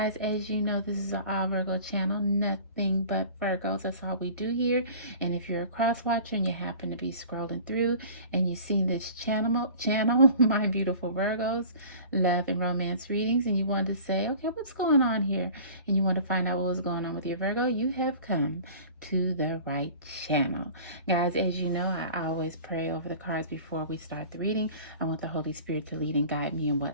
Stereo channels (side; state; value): both; inverted; correlation -0.43